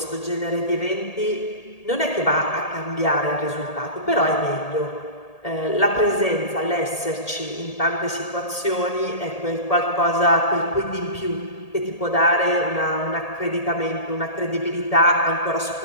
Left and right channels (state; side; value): late; right; 1.8 ms